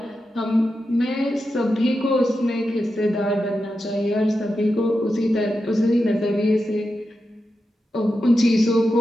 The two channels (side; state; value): both; normal; correlation 0.89